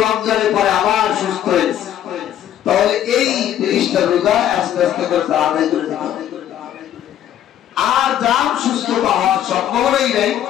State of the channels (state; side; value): quieter; right; 11.0 dB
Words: রমজানের পরে আবার সুস্থ হয়েছে, তাহলে এই 30টা রোজা আস্তে আস্তে করে আদায় করে দিতে হবে। আর যার সুস্থতা হওয়ার সম্ভাবনাই নাই,